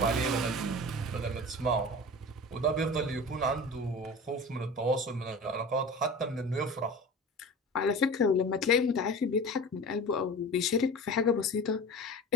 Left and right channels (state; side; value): normal; both; correlation 0.35